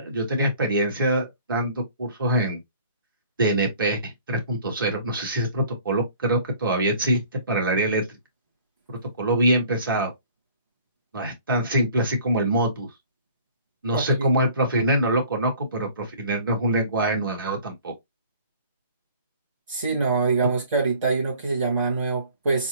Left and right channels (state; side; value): inverted; both; correlation -0.51